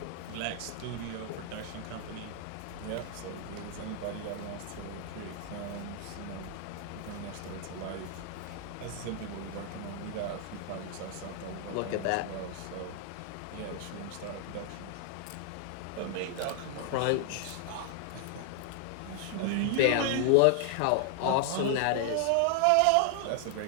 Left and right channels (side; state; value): both; different; correlation 0.00